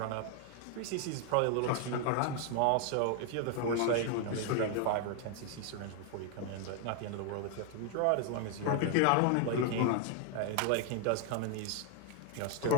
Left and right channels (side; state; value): both; different; correlation 0.00